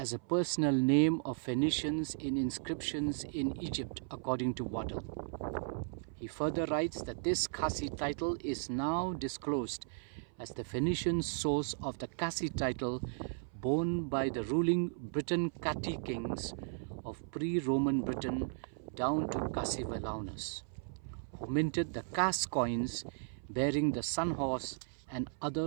a personal name of Phoenicians in inscriptions in Egypt, according to Waddell. He further writes that this Cassi title is now disclosed as the Phoenician source of the Cassi title borne by the ruling Briton Catti kings of pre-Roman Britain down to Cassivellaunus, who minted the Cas coins bearing the sun horse and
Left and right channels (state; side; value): silent; left; 54 dB below the other